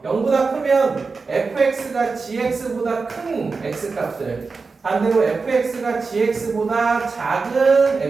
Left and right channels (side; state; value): left; quieter; 4.4 dB